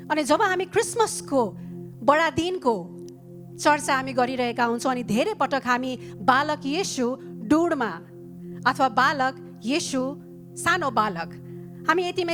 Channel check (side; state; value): both; identical; correlation 1.00